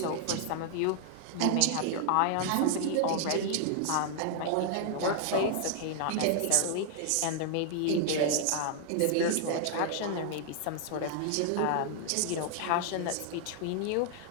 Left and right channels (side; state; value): both; different; correlation 0.00